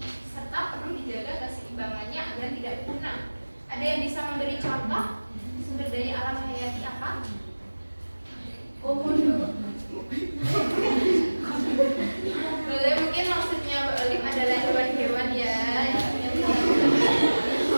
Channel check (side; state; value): both; inverted; correlation -1.00